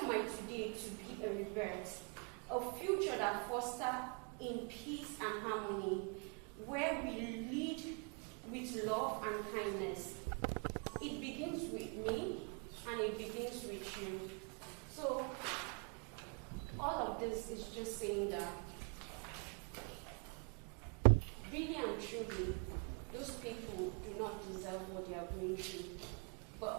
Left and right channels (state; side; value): quieter; left; 36.0 dB